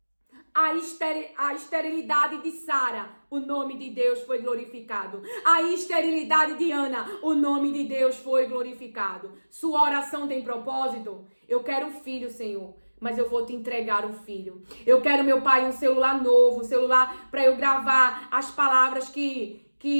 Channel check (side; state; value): both; inverted; correlation -1.00